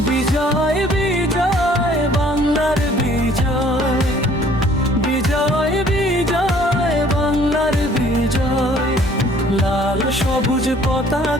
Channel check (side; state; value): both; normal; correlation 0.57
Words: বিজয় বিজয় বাংলার বিজয়, বিজয় বিজয় বাংলার বিজয়। লাল সবুজ